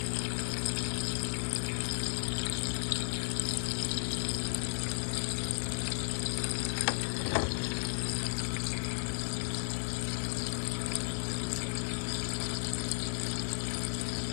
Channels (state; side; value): silent; right; 55 dB below the other